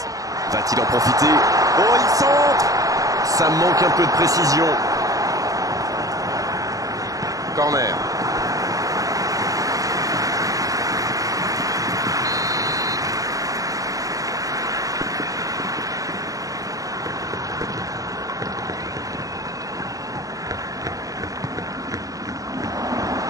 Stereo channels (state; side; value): late; left; 0.17 ms